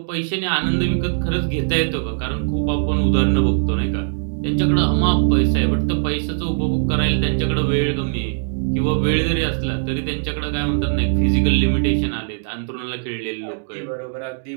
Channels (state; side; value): silent; left; digital silence